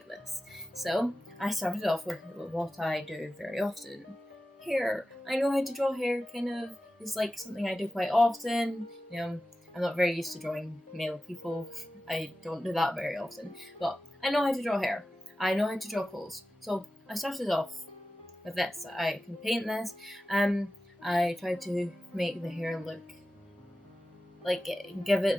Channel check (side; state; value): both; normal; correlation 0.94